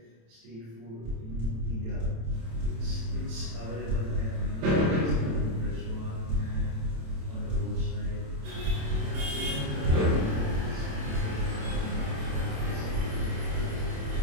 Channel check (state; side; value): late; left; 27 ms